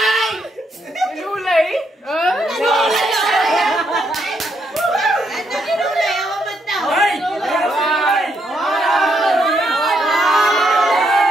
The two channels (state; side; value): normal; both; correlation 0.76